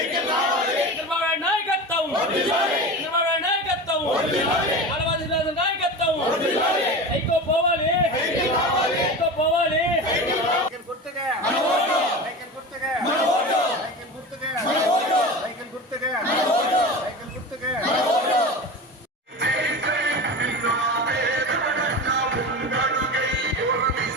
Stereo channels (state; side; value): normal; both; correlation 0.29